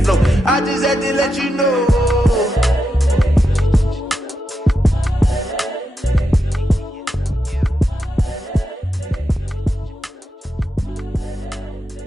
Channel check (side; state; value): both; normal; correlation 0.86